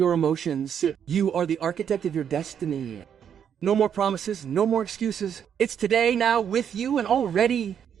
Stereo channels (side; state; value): left; quieter; 8.4 dB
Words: emotions. You are the architect of your destiny. No more promises, no more excuses. It's today, now, with you, and already.